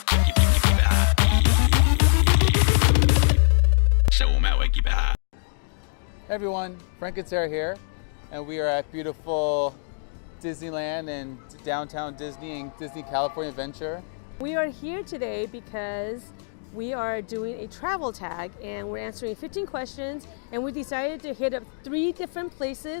Hey everyone, Frank and Sarah here, and we are at beautiful Disneyland and downtown Disney and Disney California Adventure. We are here today because we are doing a travel tag and we're answering 15 questions, and we decided to hit up 3 different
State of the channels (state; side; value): silent; right; digital silence